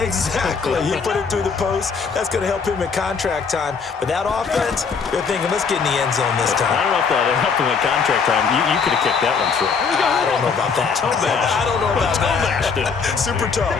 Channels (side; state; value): right; quieter; 5.6 dB